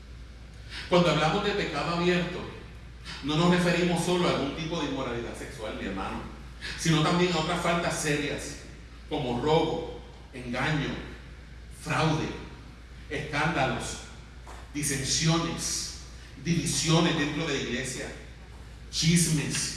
Cuando hablamos de pecado abierto, no nos referimos solo a algún tipo de inmoralidad sexual, mi hermano, sino también a otras faltas serias como robo, engaño, fraude, escándalos, disensiones, divisiones dentro de la iglesia,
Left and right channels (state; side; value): identical; both; correlation 1.00